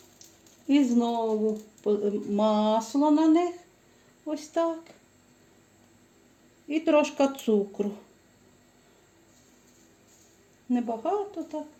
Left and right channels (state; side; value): identical; both; correlation 1.00